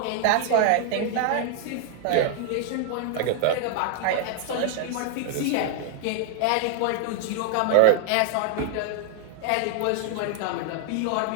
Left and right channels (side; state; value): both; different; correlation 0.00